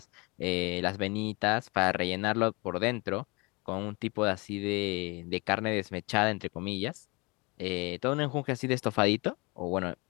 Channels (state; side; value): quieter; right; 27.6 dB